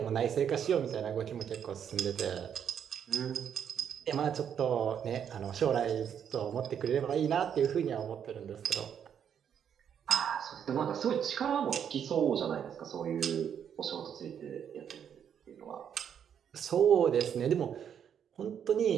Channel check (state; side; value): quieter; left; 8.4 dB